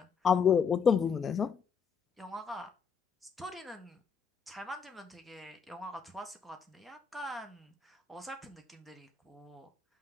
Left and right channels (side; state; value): right; quieter; 6.5 dB